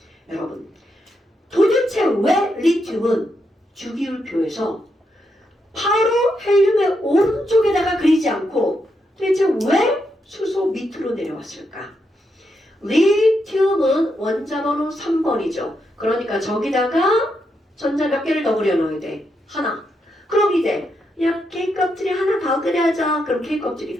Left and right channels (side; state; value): both; normal; correlation 0.82